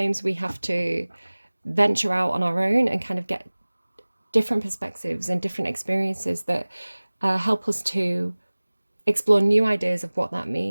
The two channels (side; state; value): both; inverted; correlation -1.00